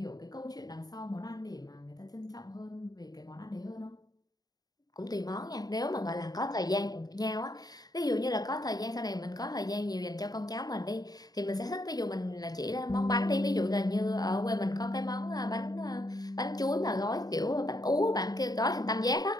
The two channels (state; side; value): late; right; 0.19 ms